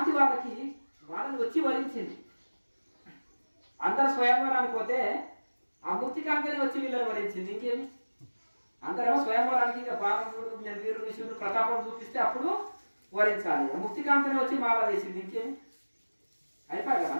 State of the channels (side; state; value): both; inverted; correlation -1.00